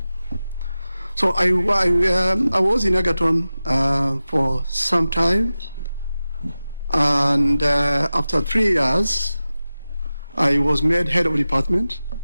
So I was in Egerton for some time, and after 3 years, I was made head of department.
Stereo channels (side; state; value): both; inverted; correlation -0.95